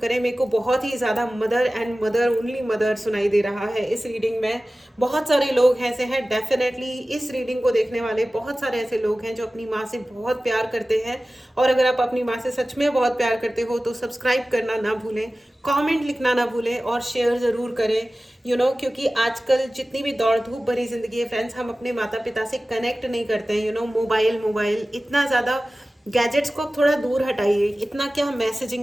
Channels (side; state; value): both; normal; correlation 0.96